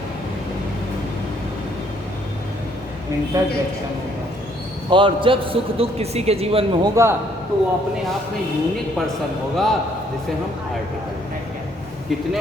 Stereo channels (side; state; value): both; normal; correlation 0.66